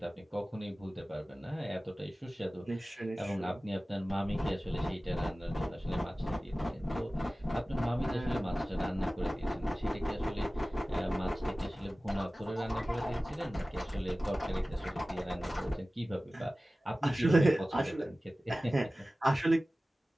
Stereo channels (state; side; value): normal; both; correlation 0.97